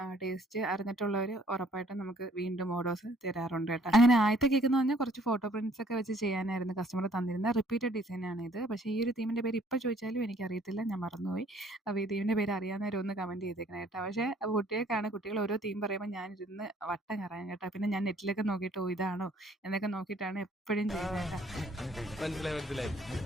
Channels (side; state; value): both; normal; correlation 0.60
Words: ടേസ്റ്റ് അറിഞ്ഞിട്ടുള്ളവർ ഉറപ്പായിട്ടും നമുക്ക് വീണ്ടും ഓർഡേഴ്സ് തരാറുണ്ട് കേട്ടോ. അങ്ങനെ ആദ്യത്തെ കേക്ക് എന്ന് പറഞ്ഞാൽ കുറച്ച് ഫോട്ടോ പ്രിന്റ്സ് ഒക്കെ വെച്ച് ചെയ്യാനായിരുന്നു കസ്റ്റമർ തന്നിരുന്നത്. റിപ്പീറ്റഡ് ഡിസൈനാണ് ഇത്. പക്ഷേ ഈ ഒരു തീമിൻ്റെ പേര് ഇപ്പോൾ ചോദിച്ചാലും എനിക്കറിയത്തില്ല, ഞാൻ മറന്നുപോയി. അപ്പോൾ ഈ തീമിൻ്റെ പേര് അറിയാവുന്നവർ ഒന്ന് കമൻറ്റ് ചെയ്തേക്കണം കേട്ടോ. പക്ഷേ കുട്ടികൾക്കാണ്, കുട്ടികൾ ഓരോ തീം പറയുമ്പോൾ ഞാനിരുന്ന് വട്ടം കറങ്ങും കേട്ടോ. പിന്നെ ഞാൻ നെറ്റിലൊക്കെ നോക്കിയിട്ട് ഇതാണോ എന്നൊക്കെ നോക്കിയിട്ടാണ് എപ്പോഴും ചെയ്യുന്നത് കേട്ടോ. മനസ്സിലായി മനസ്സിലായി.